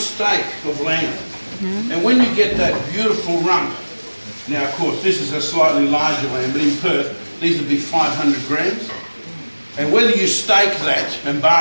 of lamb. And when you get that beautiful rump, now of course this is a slightly larger lamb, but in Perth these would be 500 grams. And whether you steak that and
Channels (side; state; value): both; inverted; correlation -1.00